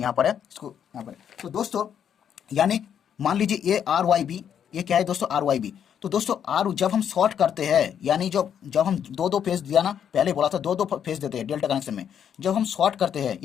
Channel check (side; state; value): right; quieter; 8.7 dB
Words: यहाँ पर है, इसको यहाँ पर है। तो दोस्तों यानी मान लीजिए ये आर वाई बी, ये क्या है दोस्तों, आर वाई बी। तो दोस्तों आर जब हम शॉर्ट करते हैं, यानी जब जब हम दो दो फेज दिया ना, पहले बोला था दो दो फेज देते हैं डेल्टा कनेक्शन में, जब हम शॉर्ट करते हैं